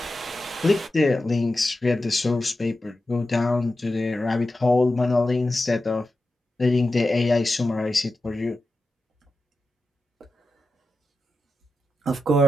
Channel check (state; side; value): normal; both; correlation 0.91